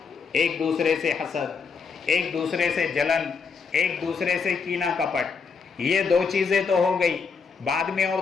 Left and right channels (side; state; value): right; quieter; 5.4 dB